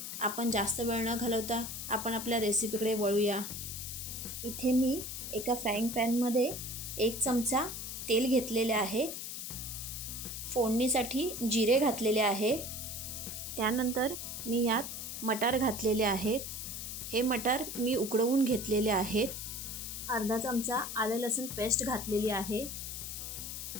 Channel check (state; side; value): noise; left; hiss, 6 dB below the sound